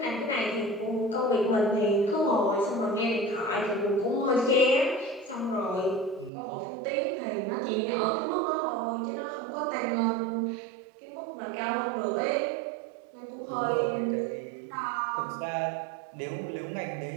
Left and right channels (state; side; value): drops out; left; at 6.3 s